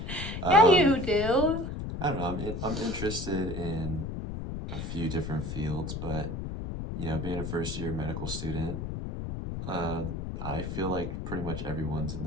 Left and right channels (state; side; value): noise; left; rumble, 5 dB below the sound